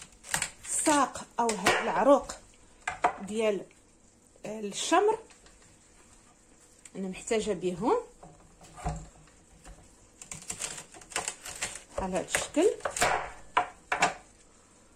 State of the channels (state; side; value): identical; both; correlation 1.00